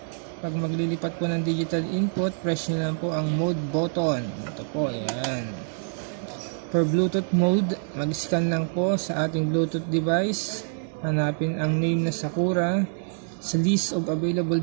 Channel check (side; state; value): left; silent; digital silence